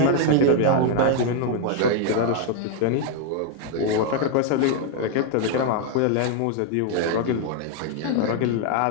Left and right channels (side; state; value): both; different; correlation 0.01